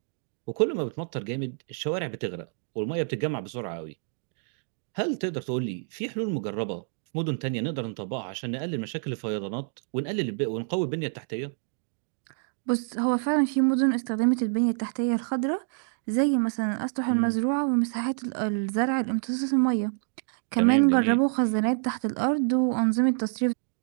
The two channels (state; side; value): silent; left; digital silence